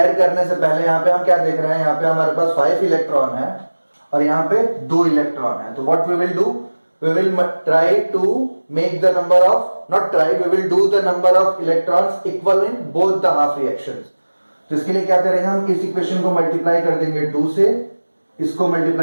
करने से पहले यहाँ पे हम क्या देख रहे हैं, यहाँ पे हमारे पास 5 इलेक्ट्रॉन है और यहाँ पे 2 इलेक्ट्रॉन है. तो what we will do, we will try to make the number of, not try, we will do the number of electrons equal in both the half reactions. तो इसके लिए क्या करेंगे हम, इस इक्वेशन को मल्टीप्लाई कर देंगे 2 से, इसको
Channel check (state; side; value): inverted; both; correlation -1.00